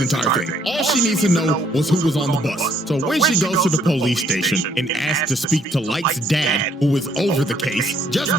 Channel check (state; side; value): normal; both; correlation 0.66